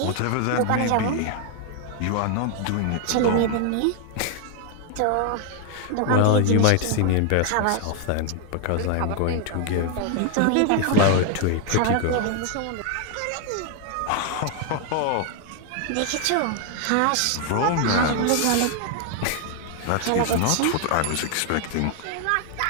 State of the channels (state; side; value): different; both; correlation 0.00